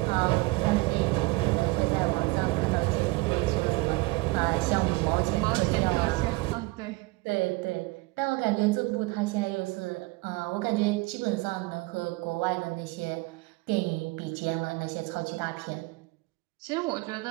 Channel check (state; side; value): quieter; left; 23.0 dB